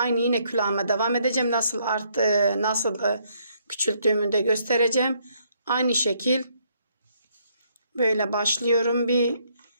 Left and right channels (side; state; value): both; inverted; correlation -0.70